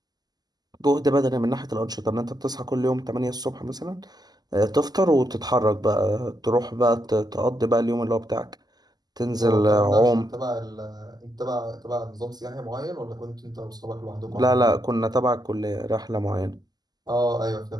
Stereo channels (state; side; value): late; left; 0.20 ms